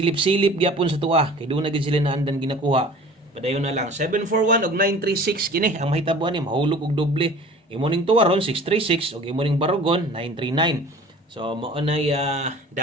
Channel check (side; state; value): both; normal; correlation 0.44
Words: gyapon sa tuwa kay doon na gyud sila naandan ginakuha padayon na lang 741 og 936 kini ang mahitabuan ni mahulog og doble imo ning tuwa ron 636 og imo ning barugon 939. So mao nay